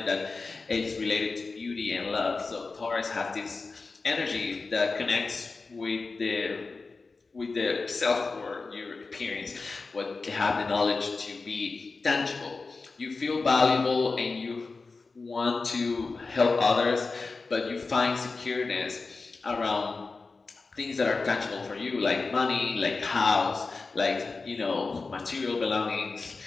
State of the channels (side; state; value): right; quieter; 4.0 dB